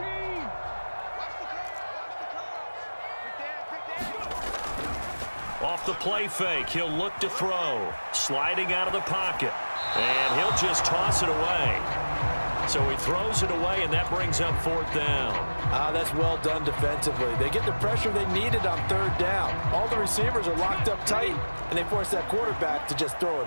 Off the play fake, he'll look to throw. Sliding out of the pocket. And he'll just toss it away. So he throws it away, and that brings up 4th down. That's well done defensively. They get the pressure they needed on 3rd down. All the receivers are locked up tight, and they force that quarterback to just throw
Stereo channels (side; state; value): both; inverted; correlation -1.00